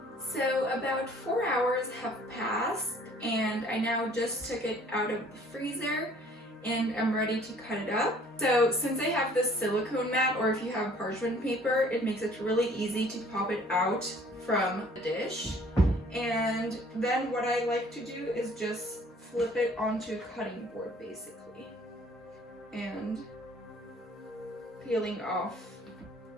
So about 4 hours have passed and I now just took it out of the freezer and I'm ready to cut it up. So since I have this silicone mat, or if you have parchment paper, it makes it really easy to pop it out from the dish. And then what I like to do is just flip it onto a cutting board basically, and peeling off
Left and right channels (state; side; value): normal; both; correlation 0.56